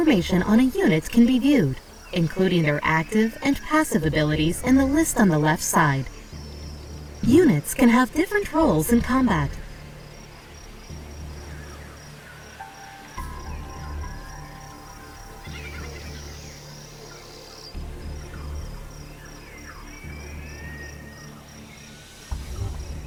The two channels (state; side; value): identical; both; correlation 1.00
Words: on a unit can be viewed, including their active and passive abilities in the list on the left side. Units can have different roles in combat.